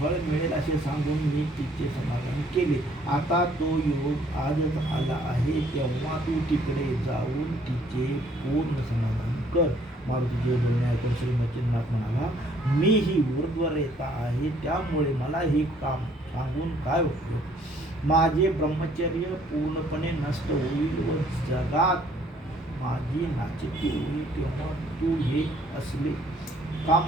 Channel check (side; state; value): both; normal; correlation 0.62